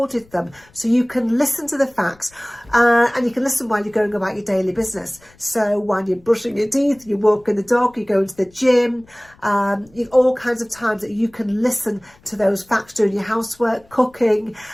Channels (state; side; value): noise; left; rumble, 29 dB below the sound